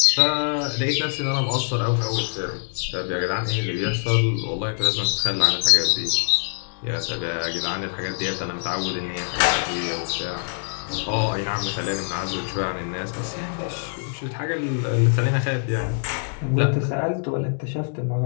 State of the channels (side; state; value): right; silent; digital silence